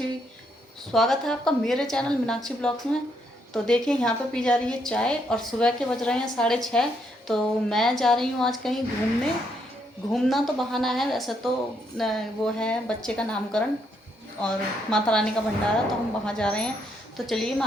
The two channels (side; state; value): both; normal; correlation 0.75